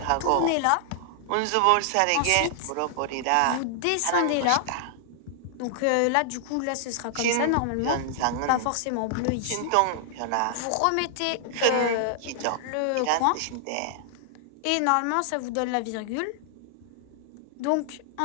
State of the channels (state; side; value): different; both; correlation -0.01